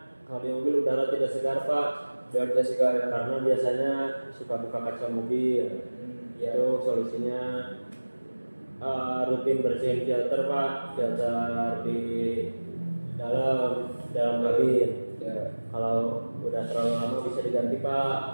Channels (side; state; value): both; inverted; correlation -1.00